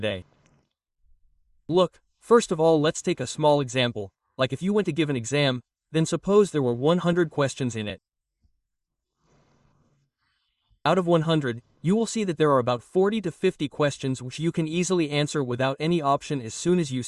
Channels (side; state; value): both; identical; correlation 1.00